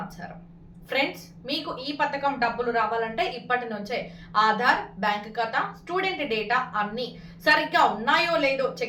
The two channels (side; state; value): both; identical; correlation 1.00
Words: ఫ్రెండ్స్, మీకు ఈ పథకం డబ్బులు రావాలంటే ఇప్పటి నుంచే ఆధార్, బ్యాంక్ ఖాతా, స్టూడెంట్ డేటా అన్ని సరిగ్గా ఉన్నాయో లేదో